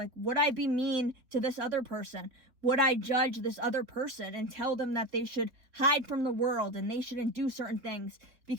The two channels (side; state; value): left; late; 3.8 ms